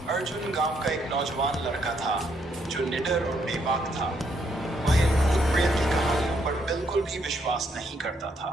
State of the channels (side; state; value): both; normal; correlation 0.73